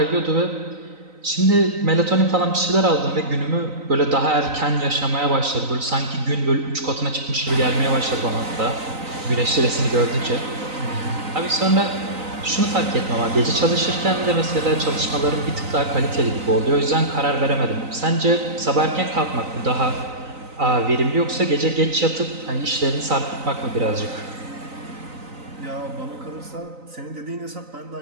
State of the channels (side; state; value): left; late; 3.9 ms